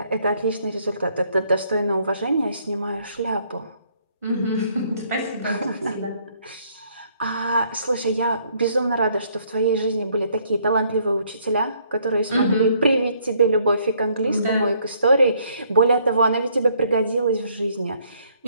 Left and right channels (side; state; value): both; inverted; correlation -0.66